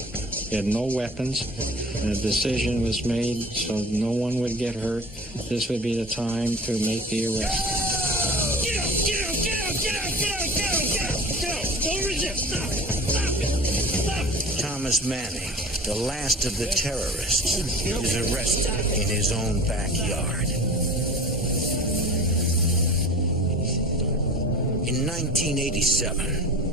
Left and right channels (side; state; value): both; normal; correlation 0.39